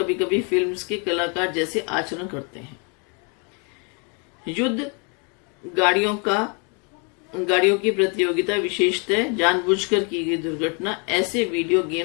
कभी फिल्म्स के कलाकार जैसे आचरण करते हैं। युद्ध गाड़ियों की प्रतियोगिता, विशेषतः जानबूझकर की गई दुर्घटना, ऐसे वीडियो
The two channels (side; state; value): right; quieter; 35.3 dB